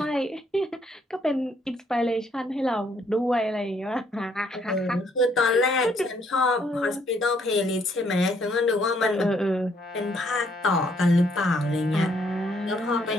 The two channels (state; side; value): normal; both; correlation 0.69